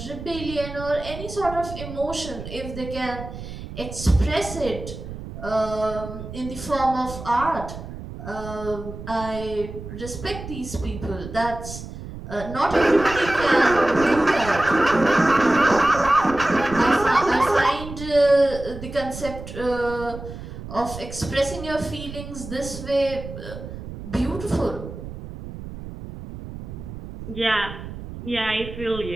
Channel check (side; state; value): right; noise; rumble, 11 dB below the sound